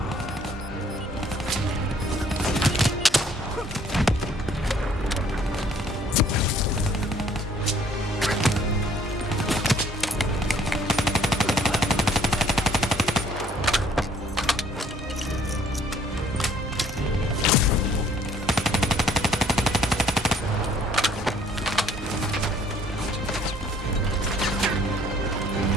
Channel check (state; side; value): normal; both; correlation 0.60